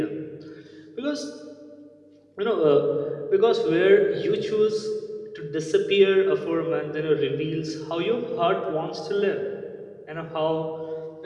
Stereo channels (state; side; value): identical; both; correlation 1.00